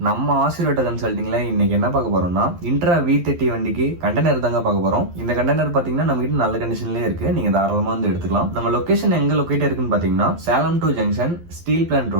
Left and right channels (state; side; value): late; left; 12 ms